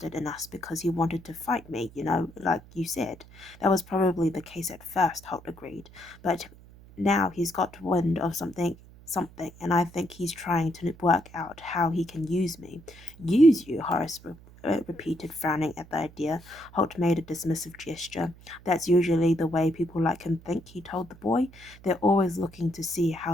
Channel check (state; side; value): noise; right; hum, 22 dB below the sound